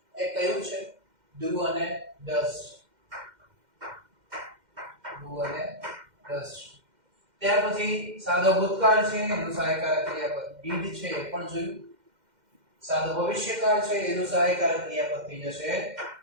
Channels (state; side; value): late; left; 2.1 ms